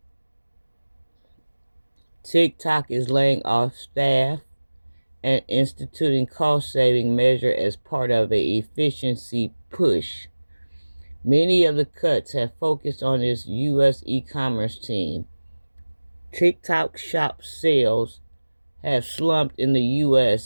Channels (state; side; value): inverted; both; correlation -1.00